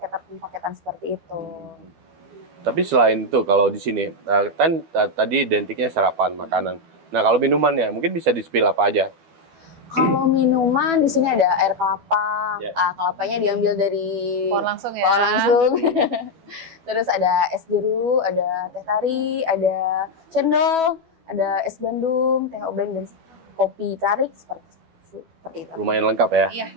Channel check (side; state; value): left; late; 12 ms